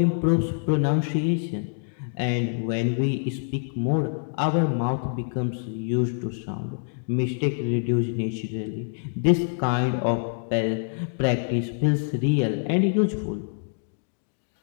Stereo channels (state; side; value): silent; right; digital silence